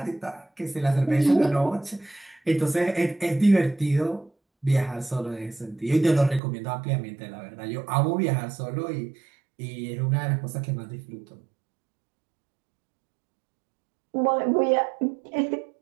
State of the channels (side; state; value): left; drops out; at 6.4 s